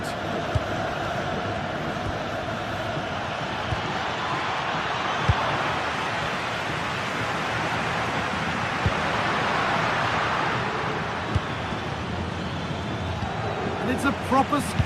And it's a proper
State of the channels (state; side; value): identical; both; correlation 1.00